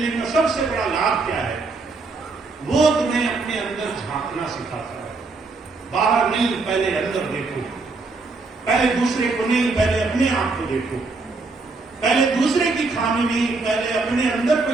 का सबसे बड़ा लाभ क्या है? वो तुम्हें अपने अंदर झांकना सिखाता है। बाहर नहीं, पहले अंदर देखो। पहले दूसरे को नहीं, पहले अपने आप को देखो। पहले दूसरे की खामी नहीं, पहले अपने अंदर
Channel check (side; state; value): left; quieter; 3.8 dB